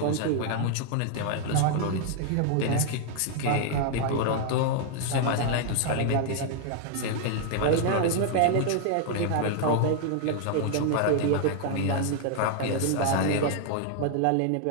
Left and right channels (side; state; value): both; different; correlation 0.00